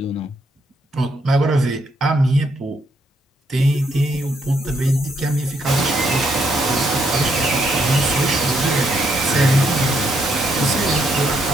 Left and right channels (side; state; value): both; normal; correlation 0.75